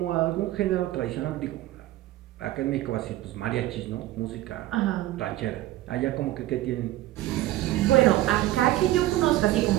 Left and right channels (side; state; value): left; quieter; 15.5 dB